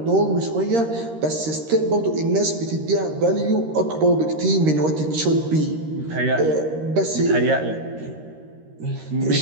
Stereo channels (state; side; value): late; left; 13 ms